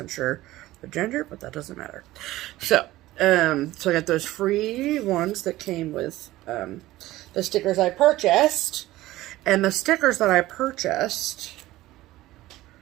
sure the gender, but that doesn't matter. So I got those free ones that came with the stickers I purchased. And the stickers that I purchased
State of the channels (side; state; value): left; quieter; 16.7 dB